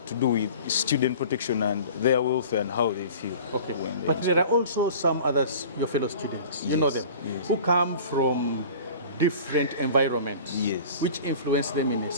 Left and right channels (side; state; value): both; inverted; correlation -0.43